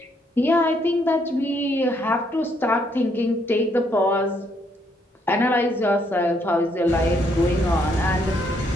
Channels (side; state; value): both; normal; correlation 0.72